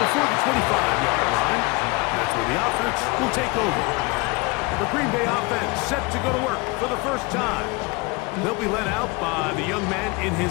the 25-yard line. That's where the offense will take over. The Green Bay offense set to go to work for the first time. They'll be led out by the young man in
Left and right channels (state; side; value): quieter; right; 26.2 dB